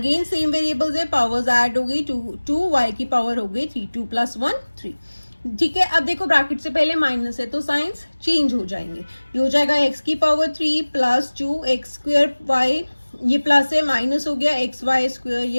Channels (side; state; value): both; inverted; correlation -1.00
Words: सेम वेरिएबल्स है, पावर्स ऐड हो गई, 2 y की पावर हो गई 3, 2 + 1 3। ठीक है, अब देखो ब्रैकेट से पहले माइनस है तो साइंस चेंज हो जाएंगे, ये हो जाएगा x की power 3 plus 2 x square y, ये प्लस है, माइनस हो गया एक्स वाई स्क्वायर, ये